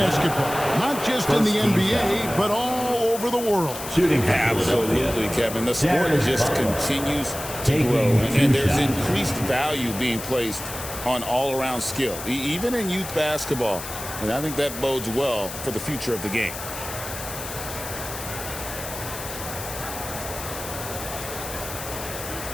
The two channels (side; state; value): left; noise; hiss, 9 dB below the sound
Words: Not just in the NBA, but all over the world. Absolutely, Kevin. The sport just continues to grow. And there's increased value being placed on all-around skill, even in youth basketball. And I think that bodes well for the future of the game.